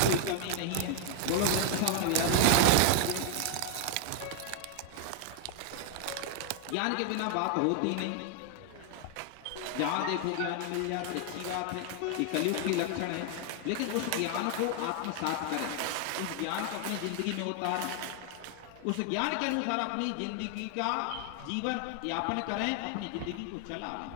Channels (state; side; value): different; both; correlation 0.00